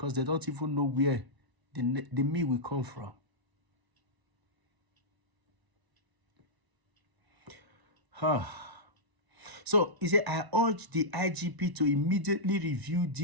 they don't even know where the meal will come from. So he said, I urge the IGP to immediately review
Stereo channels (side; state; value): left; late; 1.0 ms